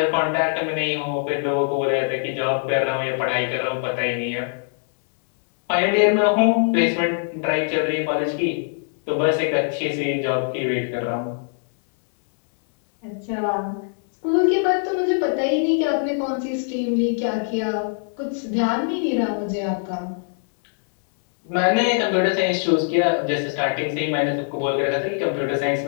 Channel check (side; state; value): right; silent; 64 dB below the other